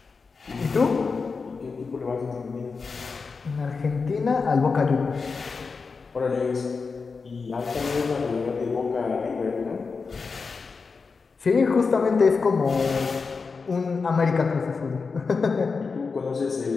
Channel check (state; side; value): quieter; right; 4.8 dB